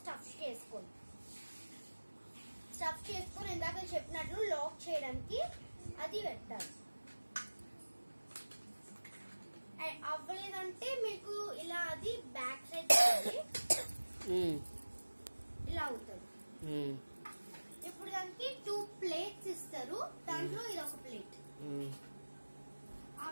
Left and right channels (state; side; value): inverted; both; correlation -1.00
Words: స్టఫ్ చేసుకోండి. స్టఫ్ చేసుకొని ఇందాక చెప్పినట్లు లాక్ చేయడానికి అది పెట్టాలి. అవ్వలేదంటే మీకు ఇలా అది బ్యాక్ సైడ్ ఇలా అవుతుంది. ఇప్పుడు దానికి 2 ప్లేట్స్ ఇస్తారు, దాంట్లో ఇది ఒక ప్లేట్. ఆ